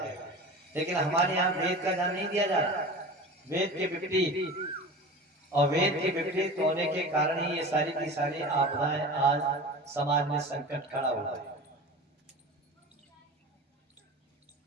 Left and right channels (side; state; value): both; normal; correlation 0.34